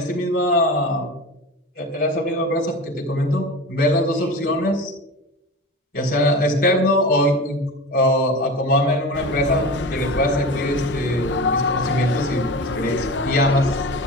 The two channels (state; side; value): normal; both; correlation 0.30